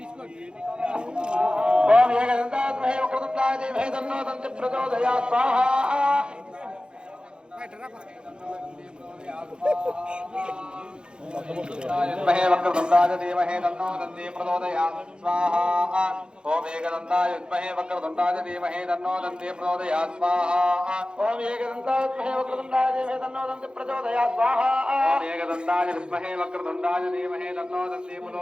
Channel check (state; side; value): late; left; 0.050 ms